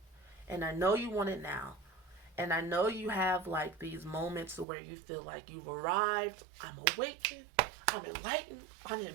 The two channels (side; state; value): left; drops out; at 4.7 s